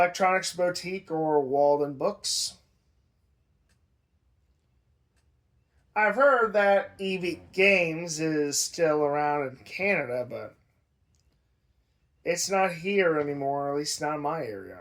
Boutique or Walden Books. I've heard that EV Games is still around in Canada, but it's not here anymore, at least not in my area.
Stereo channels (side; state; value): both; identical; correlation 1.00